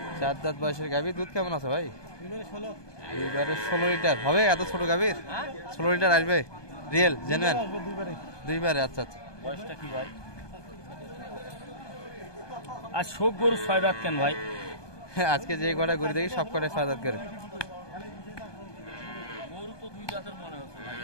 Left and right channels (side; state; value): right; late; 1.2 ms